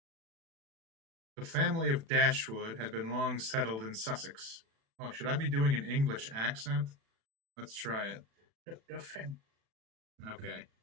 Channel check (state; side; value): late; left; 36 ms